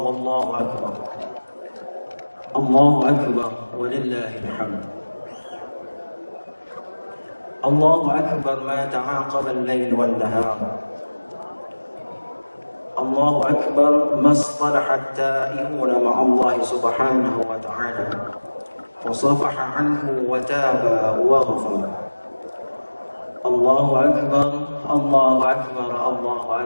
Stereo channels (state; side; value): inverted; both; correlation -1.00